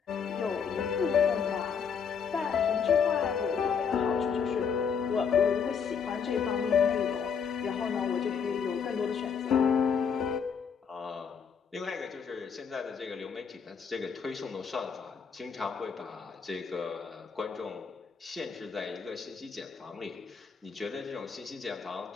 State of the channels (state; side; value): quieter; right; 6.5 dB